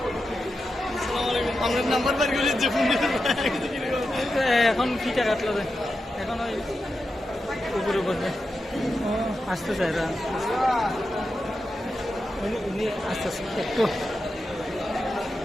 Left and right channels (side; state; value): both; normal; correlation 0.89